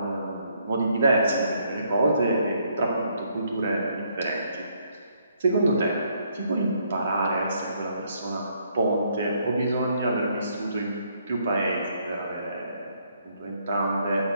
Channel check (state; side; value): inverted; both; correlation -0.70